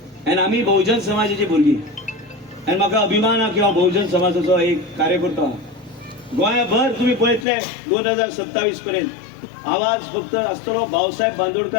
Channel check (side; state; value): right; drops out; at 7.5 s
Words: आनी आमी बहुजन समाजाची भुरगीं आनी म्हाका अभिमान आहा की हांव बहुजन समाजाचो एक कार्यकर्तो आहा गोंयभर तुम्ही पळयतले 2027 पर्यंत आवाज फक्त आसतलो भाऊसाहेब